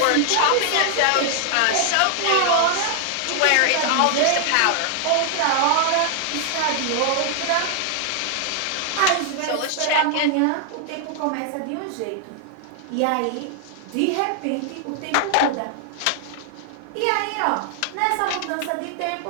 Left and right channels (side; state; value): both; different; correlation 0.00